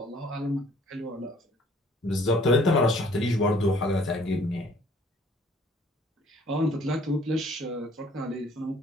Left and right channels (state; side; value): normal; both; correlation 0.57